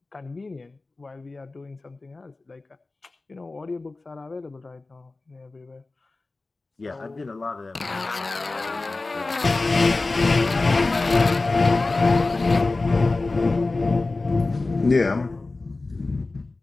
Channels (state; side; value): quieter; right; 3.4 dB